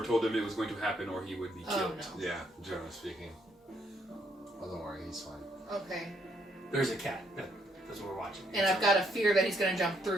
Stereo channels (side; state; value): both; normal; correlation 0.72